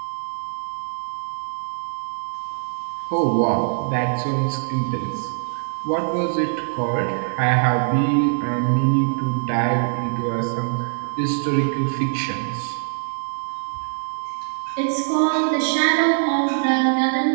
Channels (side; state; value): left; silent; digital silence